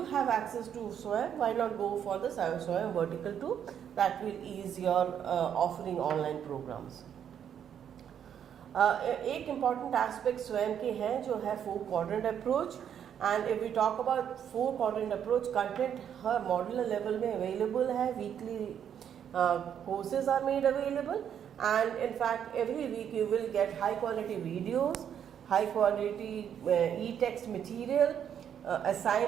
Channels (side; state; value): left; quieter; 8.9 dB